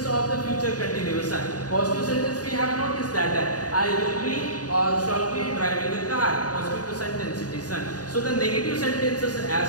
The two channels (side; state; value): right; late; 0.68 ms